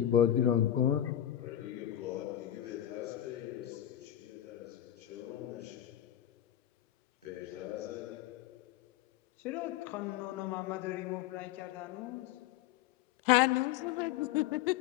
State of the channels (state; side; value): quieter; right; 11.9 dB